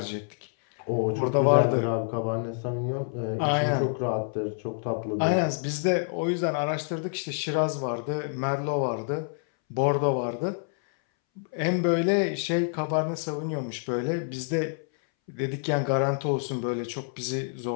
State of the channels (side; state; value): right; silent; 60 dB below the other